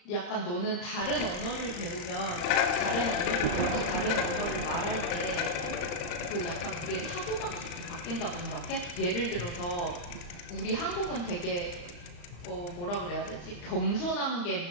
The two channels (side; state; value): right; late; 35 ms